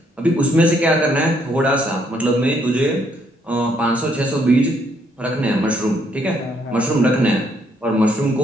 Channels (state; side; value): normal; both; correlation 0.71